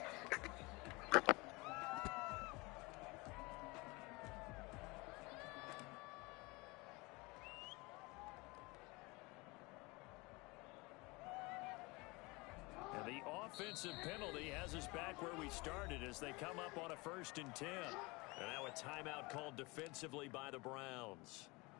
And the offensive penalty has us back where we started as they come up on a 1st and 10. And now a timeout called defensively by the Browns.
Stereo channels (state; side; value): quieter; right; 25.0 dB